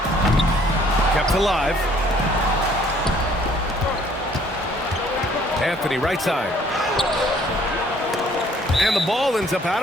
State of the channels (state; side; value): normal; both; correlation 0.60